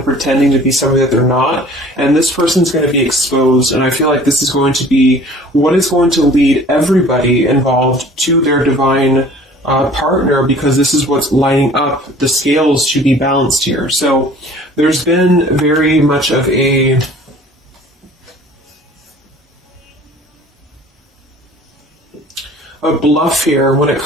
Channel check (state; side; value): normal; both; correlation 0.49